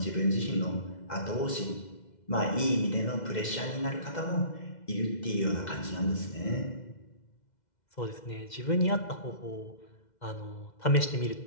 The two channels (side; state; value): right; late; 2.0 ms